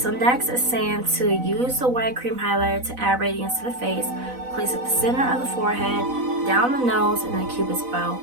next it's saying to use the white cream highlighter to add radiance to the face. Place at the center of the forehead, down the nose, and the cupid's bow.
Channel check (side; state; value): left; late; 4.0 ms